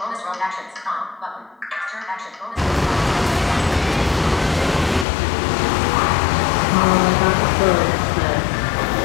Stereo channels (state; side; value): drops out; right; at 5.1 s